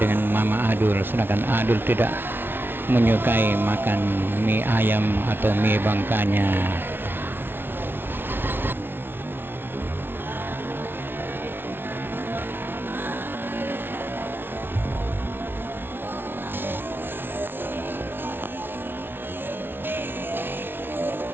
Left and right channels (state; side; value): late; left; 0.10 ms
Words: Mama Adul, sedangkan Adul tidak menyukai makan mie ayam atau mie Bangkanya.